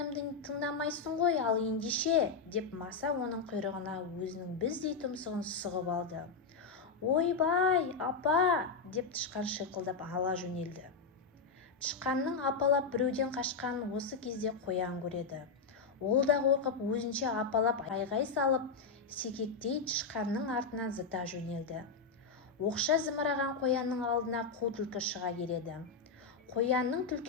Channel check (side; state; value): right; quieter; 4.8 dB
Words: тыңдамайсың ғой, ал ендеше, деп маса оның құйрығына өзінің біздей тұмсығын сұғып алды. Ойбай, апа, деп тышқан шиқылдап ала жөнелді. Тышқанның апалап біреуден қашқанын осы кезде қоян көреді. Ол да қорқып өзінше апалап айғай салып, секектей тышқанның артынан зыта жөнелді. Оқша зымыраған қоянның алдына қу түлкі шыға келеді. Қоянның